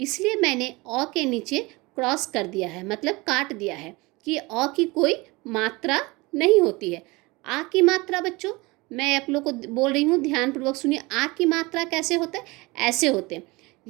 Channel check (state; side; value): quieter; left; 23.8 dB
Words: मैंने अ के नीचे क्रॉस कर दिया है, मतलब काट दिया है कि अ की कोई मात्रा नहीं होती है। आ की मात्रा बच्चों, मैं आप लोग को बोल रही हूँ, ध्यानपूर्वक सुनिए। आ की मात्रा कैसे होता है? ऐसे होते हैं।